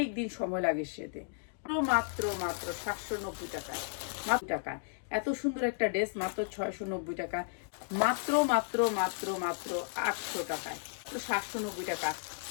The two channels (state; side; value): silent; right; digital silence